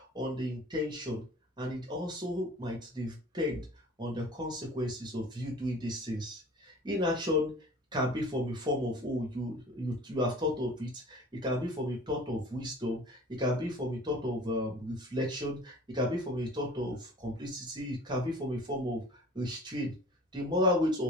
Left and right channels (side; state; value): both; normal; correlation 0.46